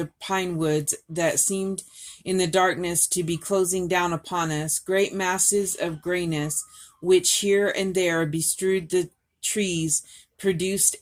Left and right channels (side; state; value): both; identical; correlation 1.00